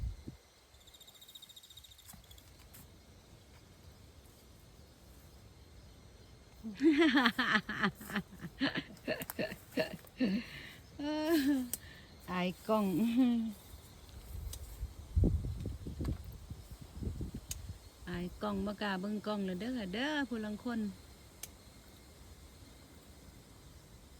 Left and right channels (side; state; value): both; identical; correlation 1.00